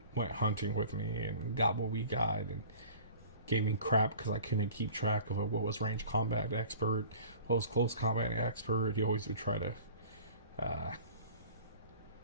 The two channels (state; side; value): inverted; both; correlation -0.44